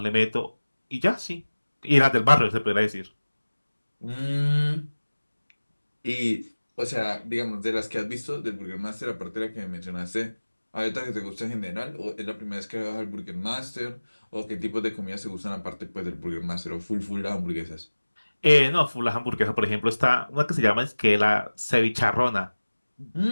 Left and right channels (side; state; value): both; inverted; correlation -1.00